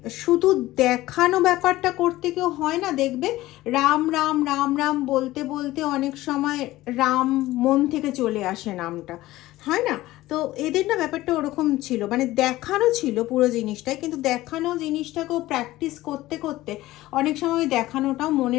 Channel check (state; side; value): quieter; right; 16.9 dB